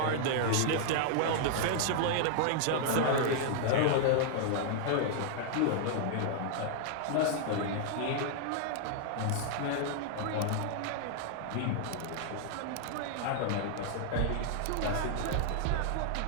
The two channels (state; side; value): different; both; correlation -0.01